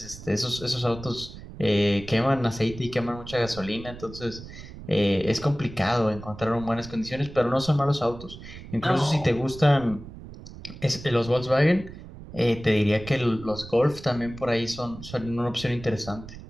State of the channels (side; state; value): right; noise; rumble, 14 dB below the sound